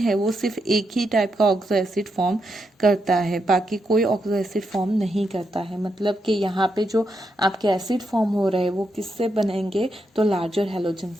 वो सिर्फ एक ही टाइप का ऑक्सो एसिड फॉर्म करता है, बाकी कोई ऑक्सो एसिड फॉर्म नहीं करता है। मतलब कि यहाँ पे जो आपके एसिड फॉर्म हो रहे हैं वो किससे बनेंगे, तो लार्जर हैलोजन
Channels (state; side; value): normal; both; correlation 0.83